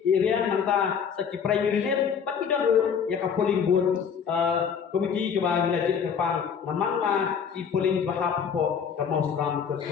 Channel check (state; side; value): quieter; right; 7.0 dB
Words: area nanta sa ki primary net bat idan ru ya ka polling booth komiti ka ba ngajit ka pang namang ma i polling bahap po ka mausram